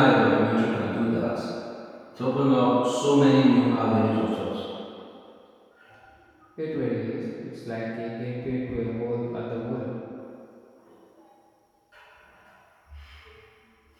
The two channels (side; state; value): both; identical; correlation 1.00